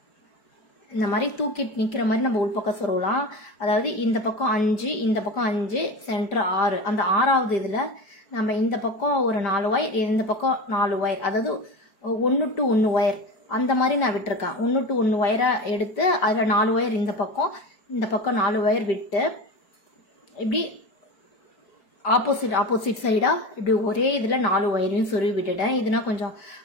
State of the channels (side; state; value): right; late; 4.7 ms